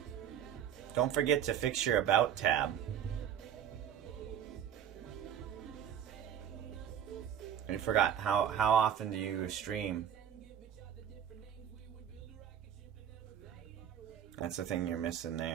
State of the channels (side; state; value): left; quieter; 9.4 dB